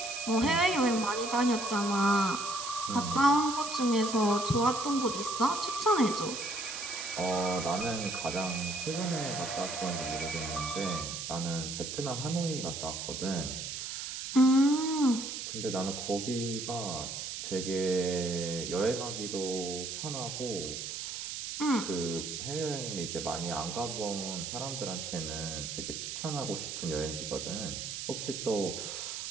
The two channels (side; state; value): right; noise; hiss, 6 dB below the sound